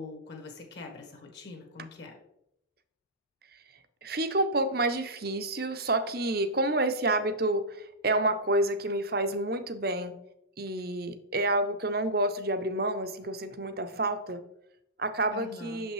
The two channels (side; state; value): both; normal; correlation -0.16